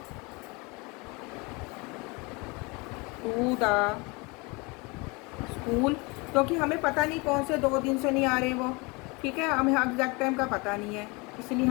to the school, क्योंकि हमें पता नहीं कौन से 2 दिन से नहीं आ रहे वो। ठीक है, हमें एग्जैक्ट टाइम का पता नहीं है, इसलिए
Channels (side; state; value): right; quieter; 27.3 dB